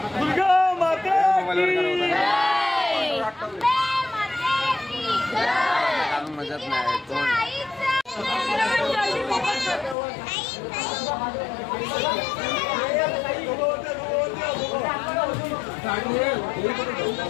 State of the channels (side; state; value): right; drops out; at 10.0 s